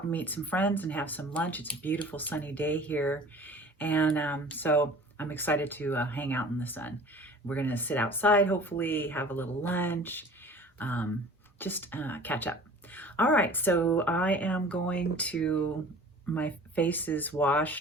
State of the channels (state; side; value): normal; both; correlation 0.44